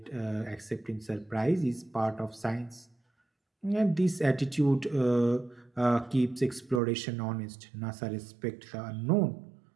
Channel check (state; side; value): drops out; left; at 6.8 s